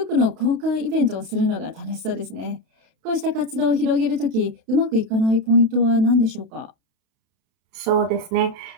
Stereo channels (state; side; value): late; left; 32 ms